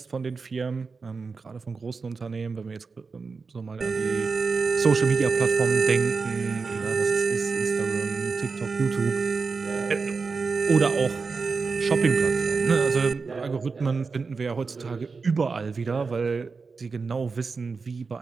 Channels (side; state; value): left; quieter; 4.7 dB